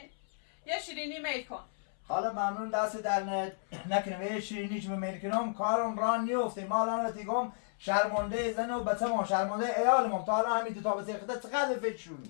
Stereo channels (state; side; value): silent; right; 56 dB below the other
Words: یه شیرینی میل کن حالا ممنون دست در نکنم یه شیرینی که میل کنم کارم ران نیفته ما الان بتیگم شرمنده زن و بچه ما شرمنده ایالم تا الان همین تا بچه خدا چقدر